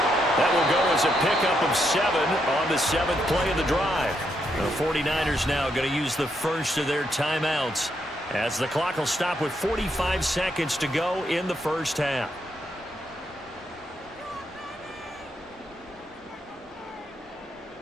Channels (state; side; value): normal; both; correlation 0.78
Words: That will go as a pickup of 7 on the 7th play of the drive. The 49ers now going to use the first of their timeouts as the clock will stop with 45 seconds to go in the first half.